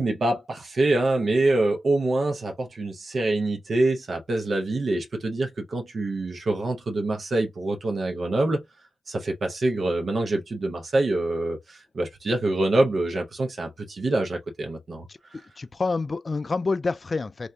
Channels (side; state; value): both; normal; correlation 0.93